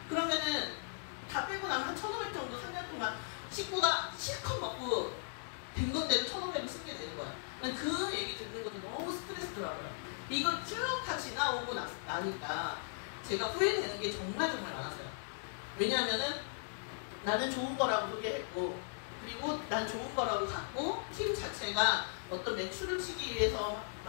그러면은 다 빼고 나면 한 1,500 정도 3년 동안 식구가 실컷 먹고 된 건데도 1,500을 쓰게 되는 거야. 그 얘기 듣는 것도 너무 스트레스더라고요. 이걸 쭉 다 지나오고 나니까 제가 후회되는 게 정말 많았어요. 왜냐하면은 나는 좋은 거라고 소개했고, 그리고 난 좋은 거라고 갖고, 팀 자체가 어떤 매출을 치기 위해서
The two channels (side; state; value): right; silent; digital silence